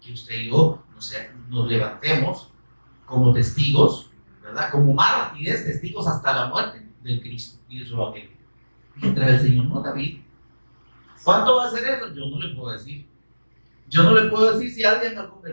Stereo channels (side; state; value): both; inverted; correlation -1.00